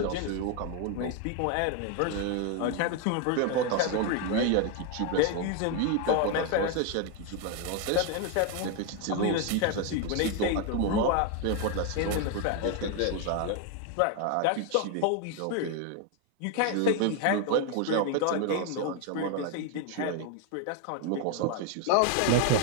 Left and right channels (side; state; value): both; different; correlation 0.01